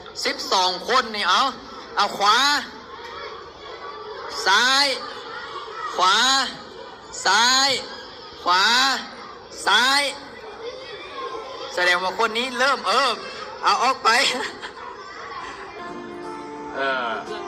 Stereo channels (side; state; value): both; identical; correlation 1.00